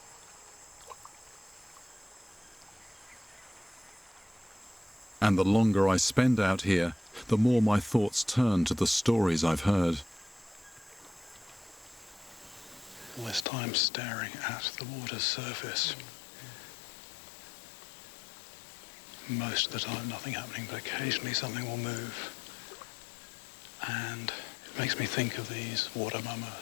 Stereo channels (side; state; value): right; drops out; at 13.5 s